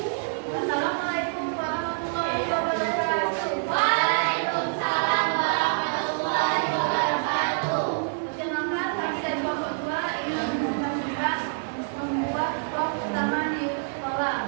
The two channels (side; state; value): left; silent; digital silence